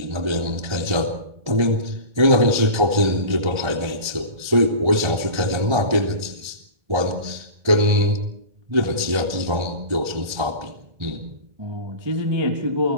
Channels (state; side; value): late; left; 1.4 ms